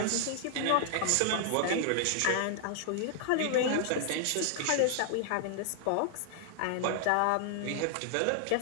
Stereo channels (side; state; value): both; different; correlation 0.00